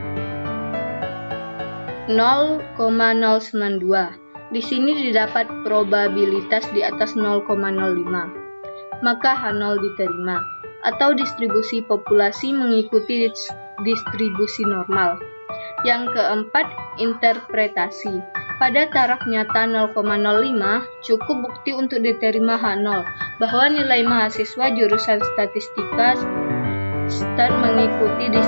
0,092. Di sini didapat probabilitas di atas 0,05, maka H0 diterima, atau distribusi populasi mengikuti distribusi normal. Yang keempat, interpretasi. Pada taraf nyata 0,05, cukup bukti untuk diterima H0 bahwa nilai mahasiswa jurusan statistika stat mengikuti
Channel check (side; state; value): both; inverted; correlation -1.00